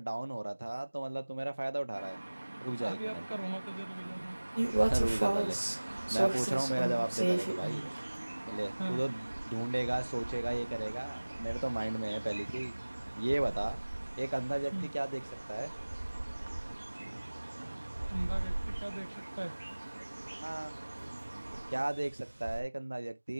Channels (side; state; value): both; inverted; correlation -1.00